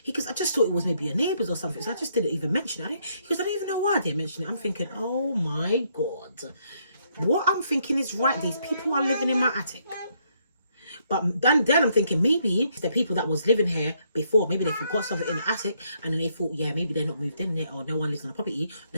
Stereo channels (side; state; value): both; inverted; correlation -0.72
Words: he goes, I just thought it was maybe your neighbours or something, so I just didn't even mention it. He goes, I don't even know why I didn't mention it. I'm thinking, oh my God, what I'm thinking is right. These people are living in my attic. But then I'm thinking, maybe the people that was living here before, maybe they forgot something in the attic, and then they thought, yeah, maybe they're not moved in yet, or no one lives on the property.